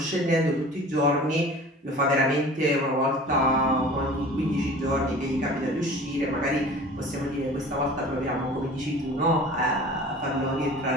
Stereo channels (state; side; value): normal; both; correlation 0.42